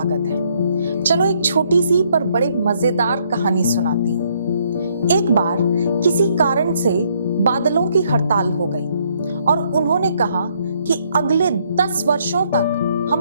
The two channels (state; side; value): inverted; both; correlation -0.70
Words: है। चलो एक छोटी सी पर बड़े मजेदार कहानी सुनाती हूँ। एक बार किसी कारण से बादलों की हड़ताल हो गई और उन्होंने कहा कि अगले 10 वर्षों तक